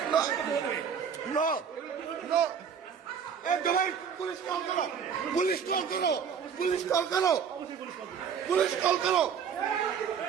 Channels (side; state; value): left; quieter; 7.2 dB